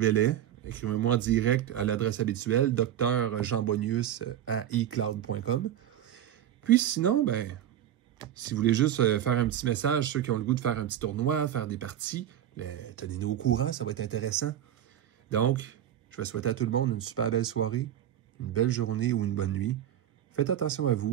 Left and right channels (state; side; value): quieter; left; 11.0 dB